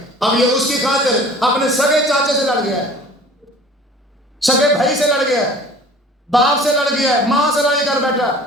اب یہ اس کی خاطر اپنے سگے چاچے سے لڑ گیا ہے، سگے بھائی سے لڑ گیا ہے، باپ سے لڑ گیا ہے، ماں سے لڑائی کر بیٹھا،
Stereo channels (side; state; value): both; normal; correlation 0.46